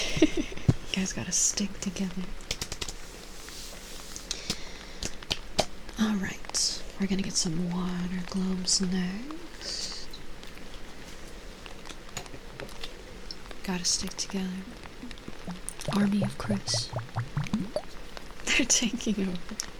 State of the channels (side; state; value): both; identical; correlation 1.00